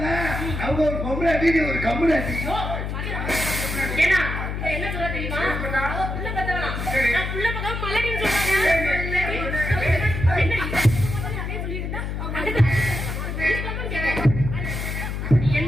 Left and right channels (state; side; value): noise; left; hum, 4 dB below the sound